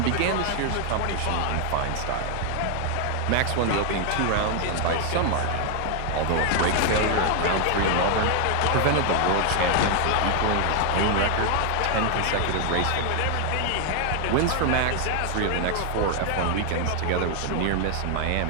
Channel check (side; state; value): both; different; correlation 0.00